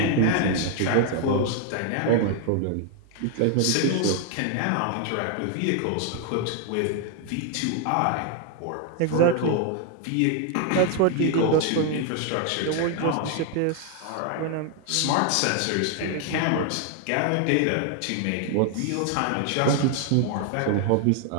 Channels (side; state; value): both; different; correlation 0.00